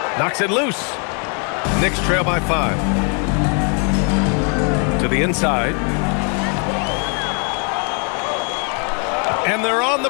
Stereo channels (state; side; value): quieter; right; 38.6 dB